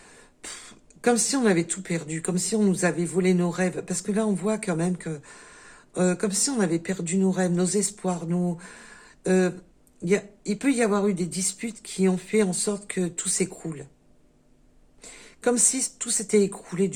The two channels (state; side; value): identical; both; correlation 1.00